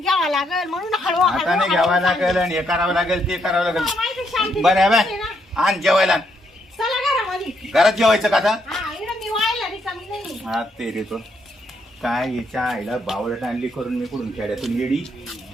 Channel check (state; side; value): normal; both; correlation 0.76